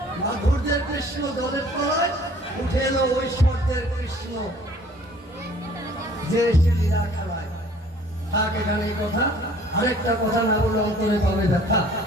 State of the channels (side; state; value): both; normal; correlation 0.54